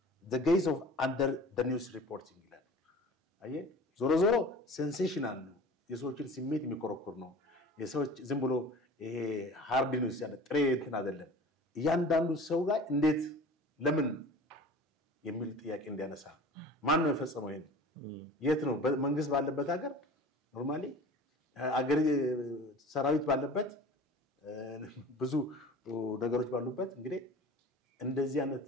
the guise of under the news reporting ይላል አየ ዞሮ ዞሮ sensational ነው የሰዎችን ስሜት የሚኮረኩር ነው የሰዎች ዝም ብሎ ይሄ ሃርድ ኒውስ ያለ ጥሬ እንትን አይደለም እያንዳንዱ ሰው ጋር እንዴት ለምን የሚል ጥያቄ እንዲያነሳ ማን ነው የፈጸመው ይሄን የት ነው መንግስት ባለበት ሀገር ኖርማሊ አገር ሰራዊት ባለበት ብዙ ነገሮች ባሉበት እንግዲህ እንደዚህ አይነት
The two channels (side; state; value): both; normal; correlation 0.41